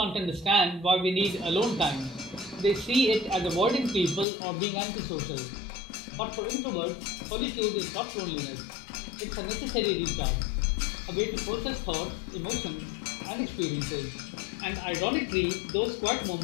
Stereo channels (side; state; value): right; drops out; at 4.2 s